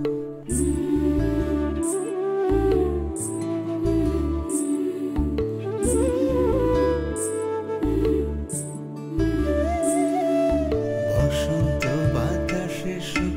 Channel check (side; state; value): both; identical; correlation 1.00